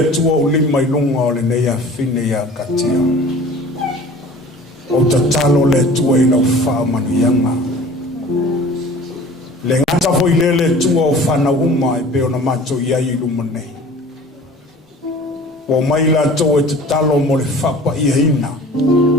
tua ulima ilunga o le neia fine ia katia. O tatalo le tua ina ufa manuyanga. Le ngata foi le tua o fana uma e peo na mato ia iluma nei. O mai la to e tatalo mo le fapa ia ina.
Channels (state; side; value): normal; both; correlation 0.45